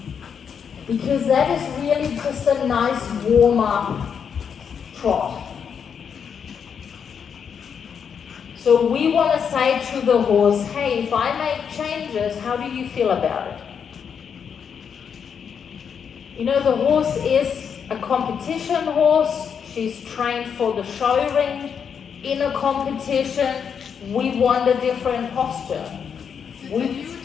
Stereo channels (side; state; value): right; quieter; 7.1 dB